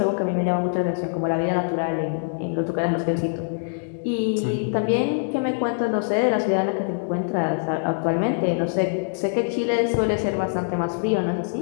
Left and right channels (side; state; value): right; silent; digital silence